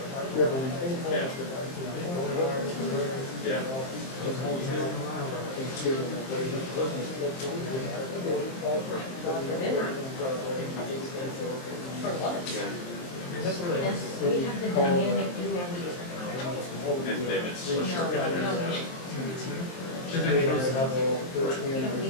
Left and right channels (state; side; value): late; right; 23 ms